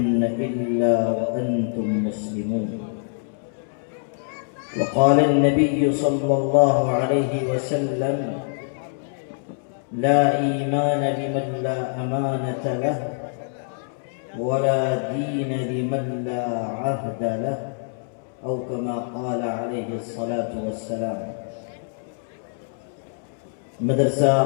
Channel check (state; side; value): silent; right; 62 dB below the other